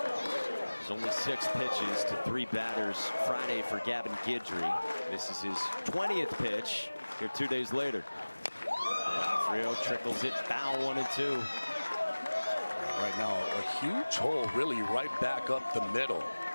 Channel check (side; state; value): both; inverted; correlation -1.00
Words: There's only 6 pitches to 3 batters Friday for Gavin Guidry. This is his 20th pitch here 2 days later. D'Onofrio trickles it foul 1-2. Right now, a huge hole really right back up the middle.